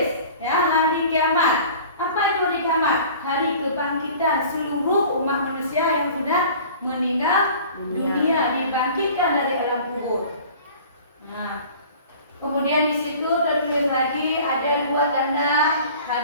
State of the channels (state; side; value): inverted; both; correlation -0.45